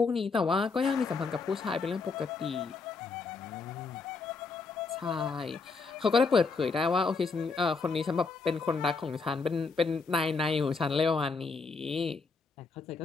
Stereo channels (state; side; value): quieter; right; 4.4 dB